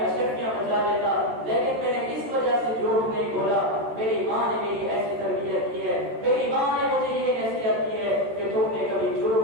اشرفیاں بچا لیتا، لیکن میں نے اس وجہ سے جھوٹ نہیں بولا، میری ماں نے میری ایسی تربیت کی ہے، میری ماں نے مجھے یہ نصیحت کی ہے کہ تم نے کبھی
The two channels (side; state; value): left; late; 13 ms